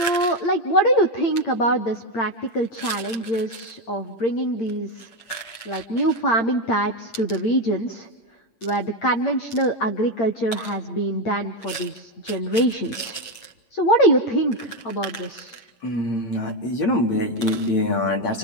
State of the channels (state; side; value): late; right; 8.8 ms